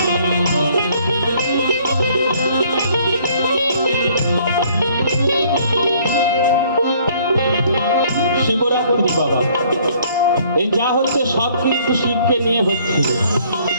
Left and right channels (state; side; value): inverted; both; correlation -0.60